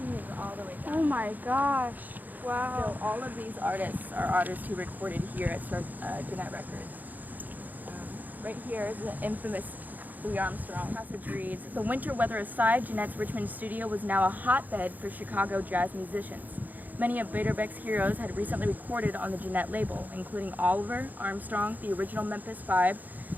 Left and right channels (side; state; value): left; late; 0.083 ms